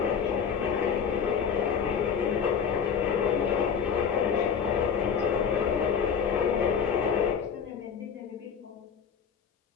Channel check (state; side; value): quieter; right; 7.0 dB